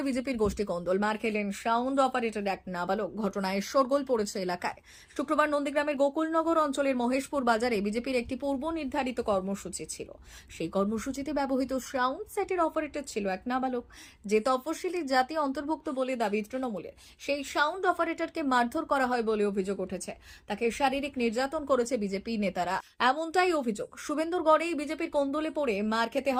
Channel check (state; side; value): identical; both; correlation 1.00